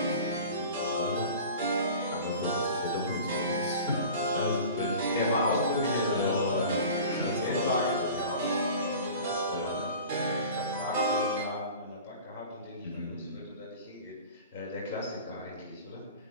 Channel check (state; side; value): inverted; both; correlation -0.40